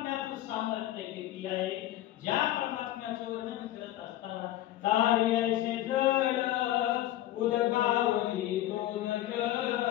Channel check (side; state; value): right; quieter; 14.0 dB